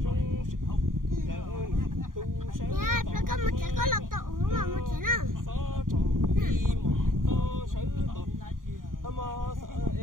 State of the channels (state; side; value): late; left; 0.90 ms